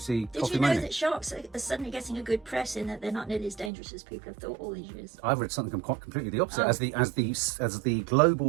Did Coffee you know Moaning? that sharks are suddenly getting a good press in that they're not nearly as dangerous as people have thought all these years? I've read something quite completely the opposite. Oh. As the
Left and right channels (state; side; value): drops out; left; at 3.7 s